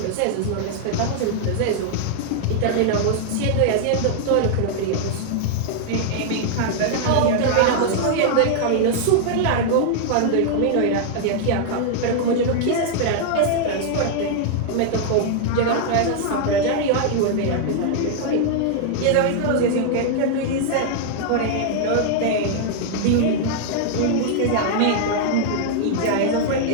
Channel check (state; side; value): different; both; correlation -0.01